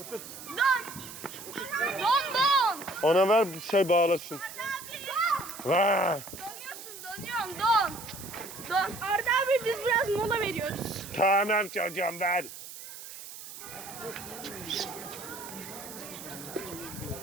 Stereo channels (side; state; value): right; noise; hiss, 13 dB below the sound